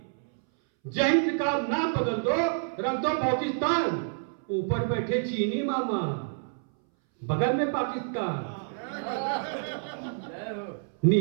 जय हिंद का नाम बदल दो, रख दो पाकिस्तान, ऊपर बैठे चीनी मामा, बगल में पाकिस्तान।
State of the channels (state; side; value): silent; left; 59 dB below the other